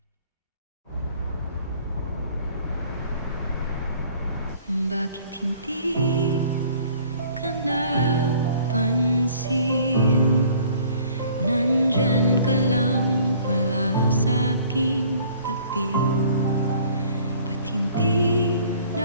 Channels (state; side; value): inverted; both; correlation -0.54